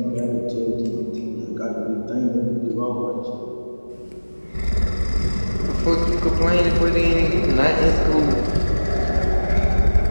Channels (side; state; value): both; inverted; correlation -1.00